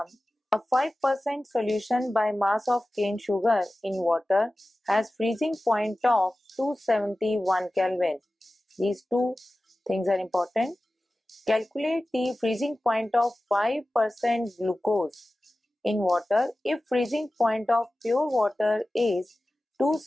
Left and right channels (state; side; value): normal; both; correlation 0.96